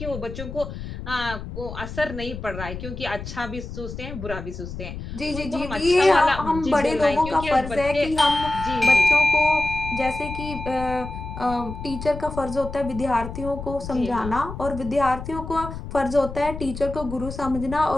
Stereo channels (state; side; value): noise; left; rumble, 9 dB below the sound